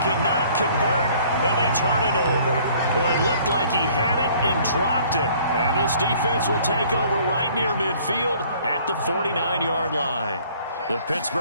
cannot convert, and they turn it over. Boy, it looked like he had it and dropped it. And this defense will take over right near midfield at the 49-yard line. The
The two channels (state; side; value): inverted; both; correlation -0.56